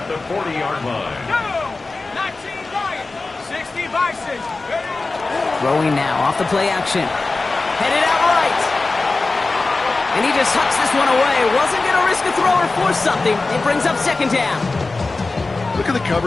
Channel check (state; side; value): quieter; right; 3.5 dB